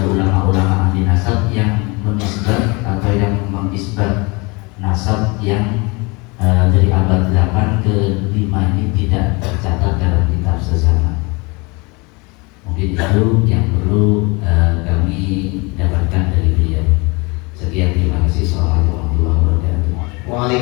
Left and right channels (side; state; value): right; quieter; 27.5 dB